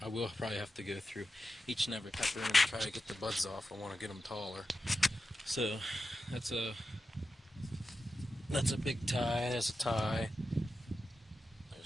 I will probably have to go through each and every pepper and try to get the buds off. I want to get them taller. So that's a Big Thai. That's a Thai.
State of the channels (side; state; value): both; normal; correlation 0.91